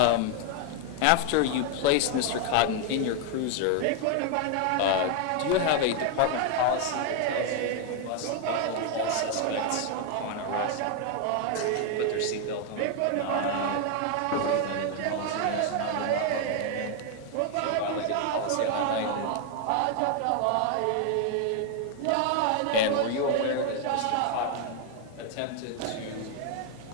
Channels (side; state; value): both; different; correlation 0.01